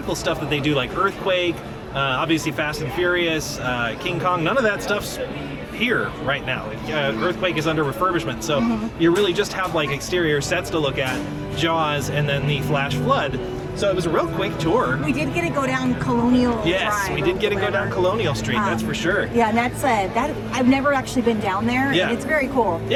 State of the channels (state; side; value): identical; both; correlation 1.00